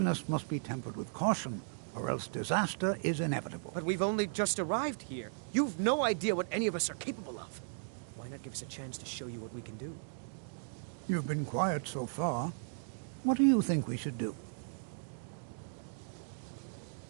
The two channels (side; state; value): left; silent; digital silence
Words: must be tempered with caution, or else disaster is inevitable. But we've only just arrived here. You've no idea what any of us are capable of. Why not give us a chance to show you what we can do? You've been quiet so far. What do you think we should do?